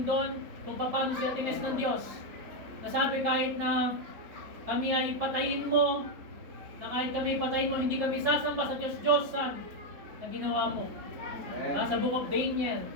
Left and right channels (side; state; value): left; late; 3.9 ms